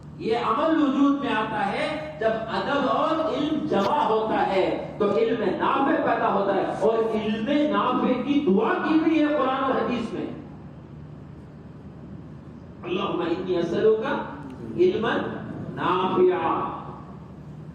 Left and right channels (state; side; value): identical; both; correlation 1.00